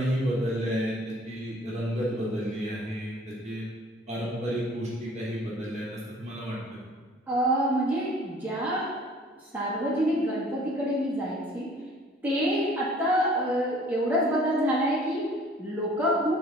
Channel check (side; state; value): both; normal; correlation 0.53